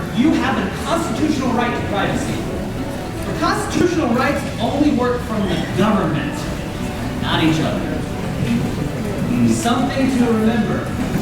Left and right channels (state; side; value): identical; both; correlation 1.00